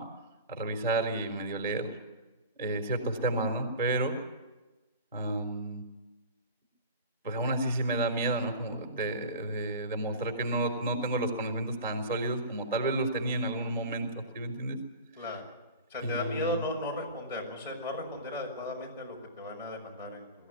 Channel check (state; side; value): inverted; both; correlation -0.36